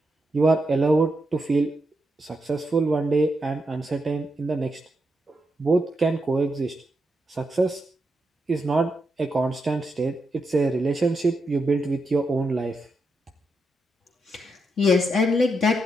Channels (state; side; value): normal; both; correlation 0.84